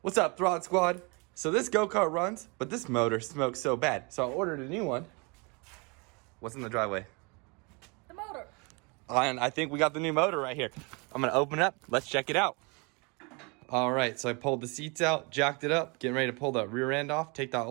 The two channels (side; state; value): left; quieter; 30.2 dB